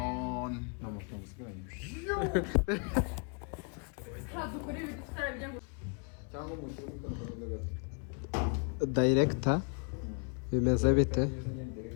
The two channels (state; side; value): quieter; right; 39.3 dB